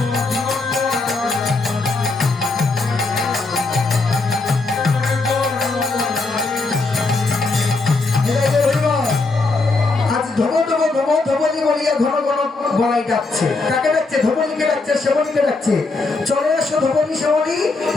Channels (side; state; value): right; quieter; 3.6 dB